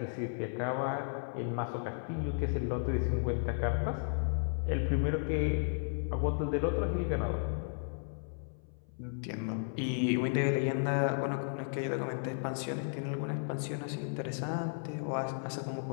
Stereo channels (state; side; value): silent; right; 55 dB below the other